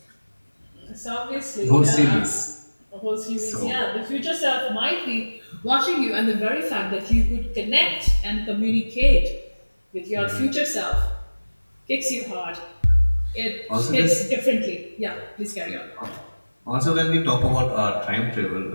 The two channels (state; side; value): inverted; both; correlation -1.00